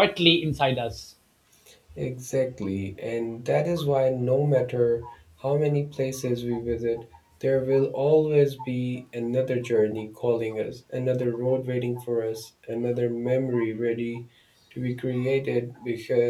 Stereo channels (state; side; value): identical; both; correlation 1.00